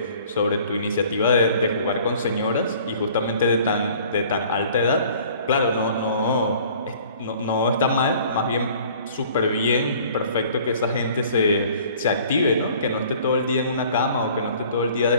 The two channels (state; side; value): inverted; both; correlation -0.52